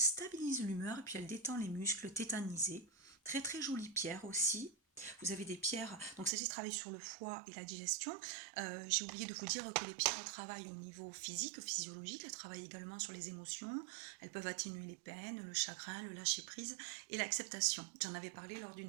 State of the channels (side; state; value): left; drops out; at 6.3 s